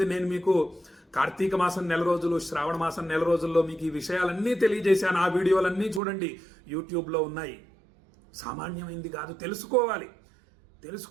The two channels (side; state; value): left; drops out; at 6.0 s